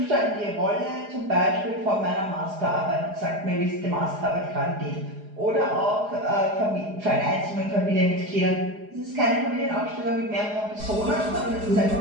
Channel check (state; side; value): late; left; 4.8 ms